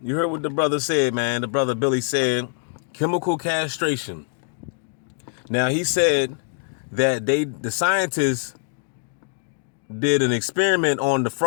you heard what the brother said, man. The brother Billy said, chemical castration. Now he said that the scientists did an experiment on the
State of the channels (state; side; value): silent; right; digital silence